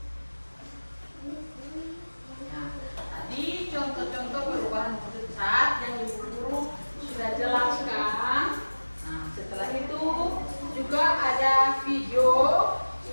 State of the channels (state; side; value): inverted; both; correlation -1.00